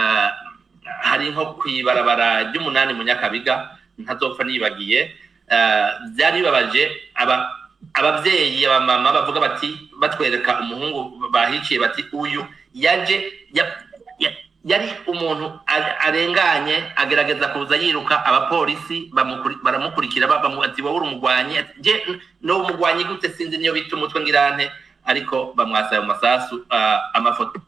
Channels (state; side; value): quieter; left; 5.0 dB